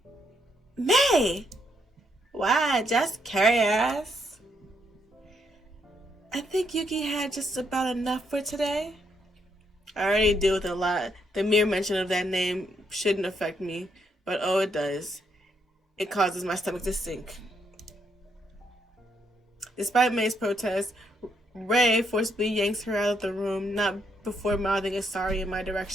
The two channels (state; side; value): normal; both; correlation 0.75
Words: May! Why, just curious. I think Yuki had just about enough for today. I already deal with a lot. The mere mention of that name shouldn't affect me, but oh, it does. It causes my stomach to sink. Despite May's protest, Ray forcibly yanks her out of the room, not before mouthing a sorry in my